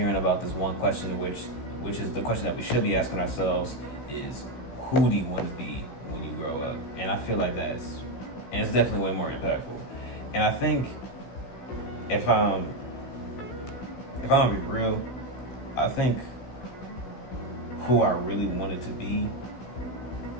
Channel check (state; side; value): late; right; 16 ms